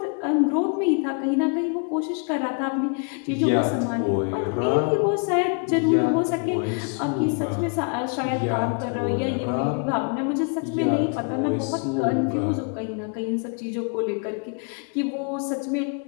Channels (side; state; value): right; quieter; 37.7 dB